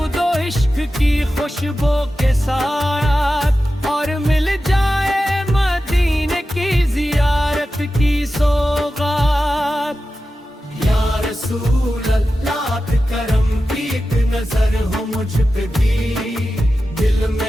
इश्क की खुशबू के साथ, और मिल जाए मदीने की ज़ियारत की सौगात। या रसूल अल्लाह करम की एक नजर हो मुझ पे भी, दिल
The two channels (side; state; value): both; normal; correlation 0.93